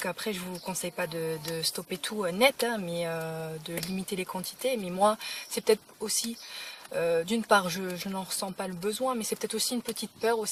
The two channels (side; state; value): both; identical; correlation 1.00